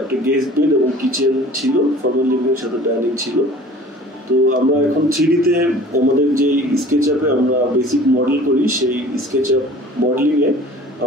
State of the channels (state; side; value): normal; both; correlation 0.46